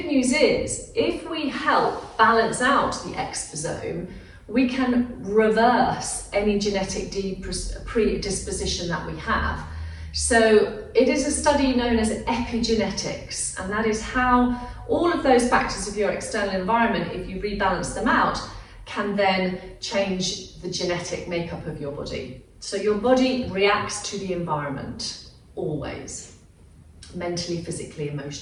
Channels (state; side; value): identical; both; correlation 1.00